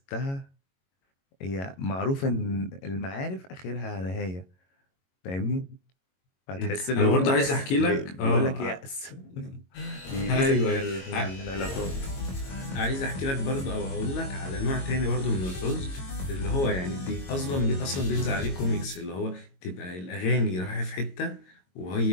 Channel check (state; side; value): late; right; 22 ms